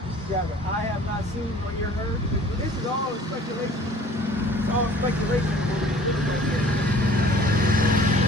Just grab it. I have not seen or ear heard. This is all speculation. It's all speculation.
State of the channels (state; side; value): normal; both; correlation 0.50